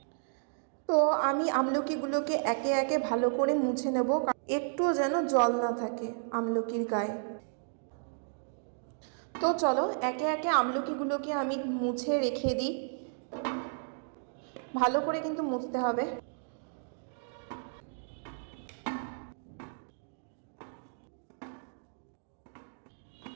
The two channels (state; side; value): silent; left; digital silence